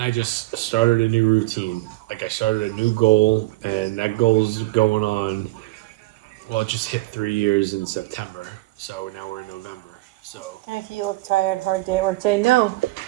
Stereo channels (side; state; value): left; quieter; 20.5 dB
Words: I just started a new routine. Like I started a new goal, and that goal's going on. Well, it just hit 3 years in September, so now we're in November. So If you look tired, hard day at work today. No,